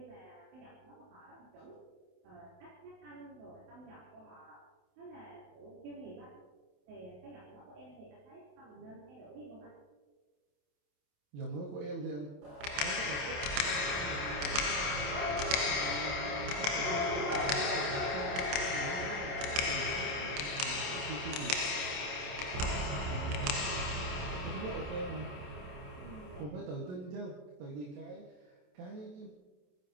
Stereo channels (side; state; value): left; late; 28 ms